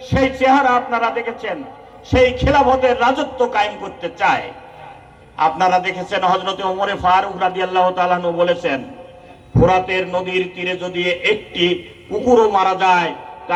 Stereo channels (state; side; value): identical; both; correlation 1.00